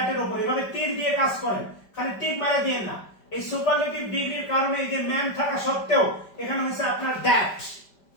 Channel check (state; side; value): late; right; 5.1 ms